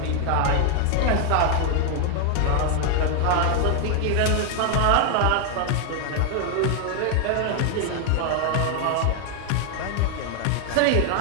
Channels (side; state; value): both; different; correlation 0.00